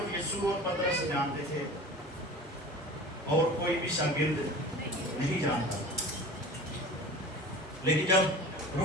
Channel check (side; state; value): both; normal; correlation 0.39